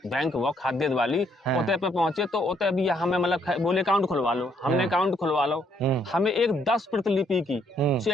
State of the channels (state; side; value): normal; both; correlation 0.70